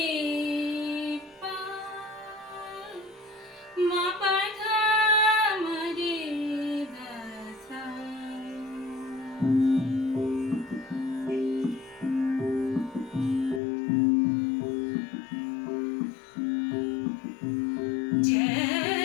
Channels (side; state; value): right; drops out; at 13.6 s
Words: পা মা পা ধা মা রে ধা সা।